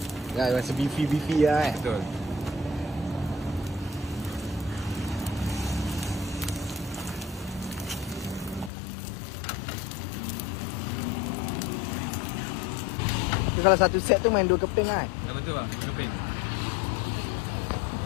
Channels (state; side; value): drops out; right; at 8.7 s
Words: Ya, rasa beefy lah Betul. Tu kalau satu set tu main 2 keping lah. Betul bang, keping.